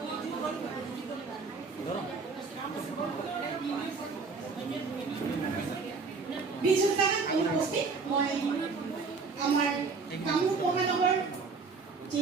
বিজু জামান অনুপস্থিত। মই আমাৰ কামৰূপ মহানগৰ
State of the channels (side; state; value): left; quieter; 4.6 dB